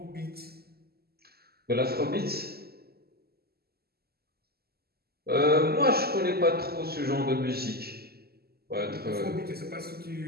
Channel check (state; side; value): late; left; 0.46 ms